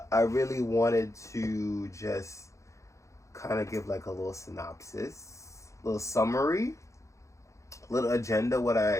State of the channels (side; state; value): right; late; 0.15 ms